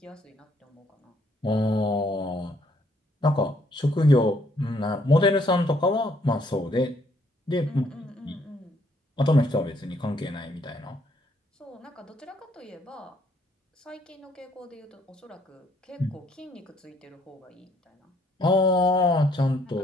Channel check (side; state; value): both; normal; correlation 0.67